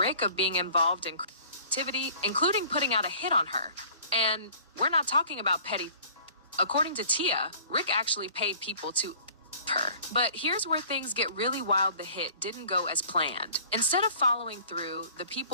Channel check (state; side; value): inverted; both; correlation -0.49